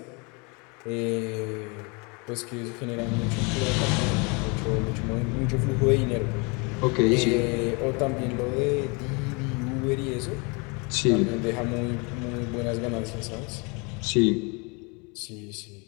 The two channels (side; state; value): right; quieter; 30.9 dB